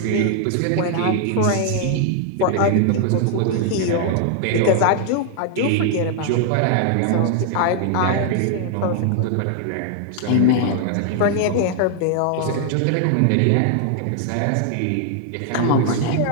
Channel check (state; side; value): different; both; correlation 0.00